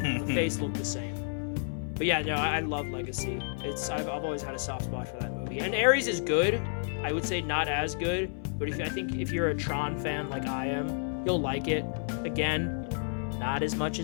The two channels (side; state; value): right; silent; 57 dB below the other